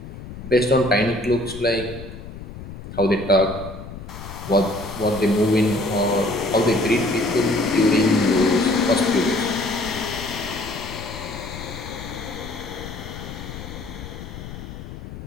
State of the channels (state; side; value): noise; left; rumble, 12 dB below the sound